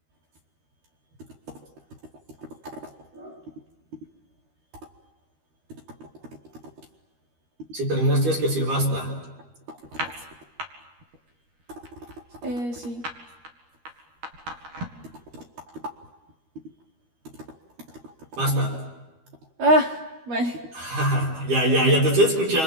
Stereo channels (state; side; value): late; left; 13 ms